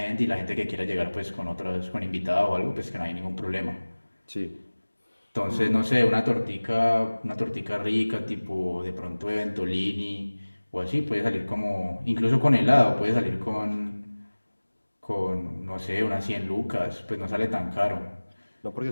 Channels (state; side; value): inverted; both; correlation -1.00